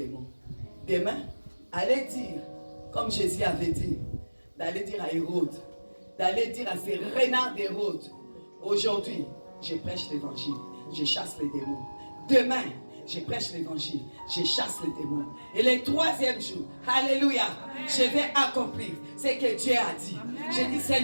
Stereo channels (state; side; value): inverted; both; correlation -1.00